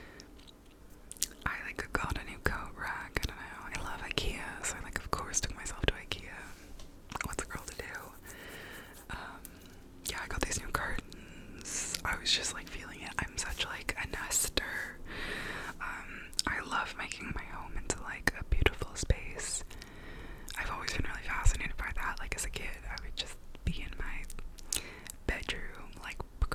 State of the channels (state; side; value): identical; both; correlation 1.00